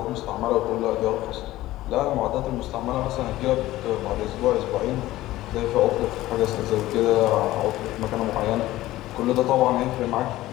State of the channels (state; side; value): quieter; right; 16.2 dB